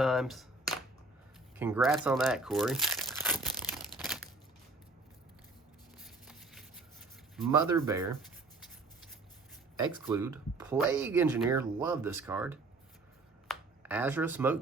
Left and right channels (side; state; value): left; quieter; 3.2 dB